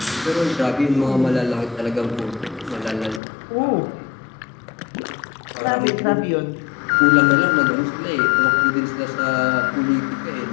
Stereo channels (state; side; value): drops out; right; at 3.2 s